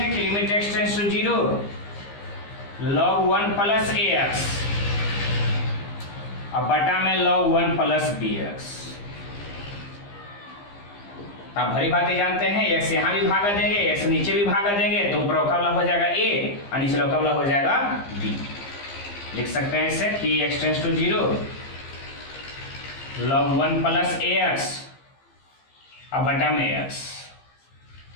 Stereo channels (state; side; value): late; right; 15 ms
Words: कि limit x tends to 0 log 1 plus ax और बटा में log 1 प्लस bx, आप भरी बातें जानते हैं, x यहाँ भी भागा देंगे, x नीचे भी भागा देंगे, तो ऊपर का वाला हो जाएगा a और नीचे का वाला हो जाएगा b। लिख सकते हैं इसे कि x tends to 0 log 1 plus ax और बटा में x